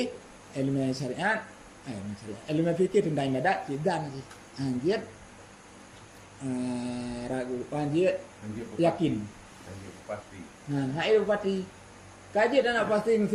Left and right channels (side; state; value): both; identical; correlation 1.00